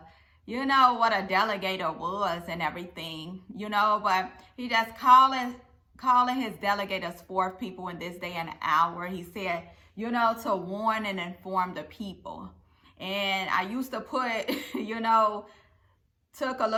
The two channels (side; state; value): both; identical; correlation 1.00